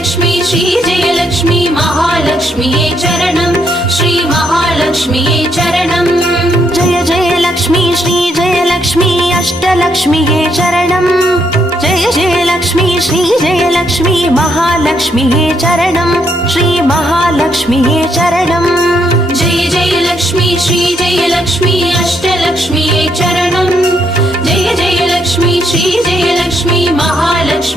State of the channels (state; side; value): normal; both; correlation 0.75